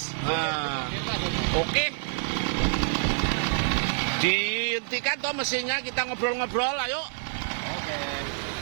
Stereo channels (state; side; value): silent; left; digital silence